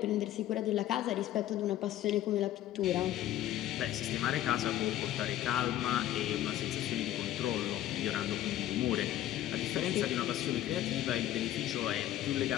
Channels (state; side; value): quieter; right; 13.1 dB